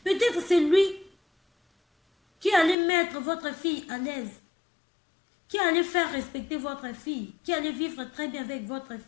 Peut-être c'est lui qui allait mettre votre fille à l'aise, qui allait faire respecter votre fille, qui allait vivre très bien avec votre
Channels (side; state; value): right; drops out; at 2.8 s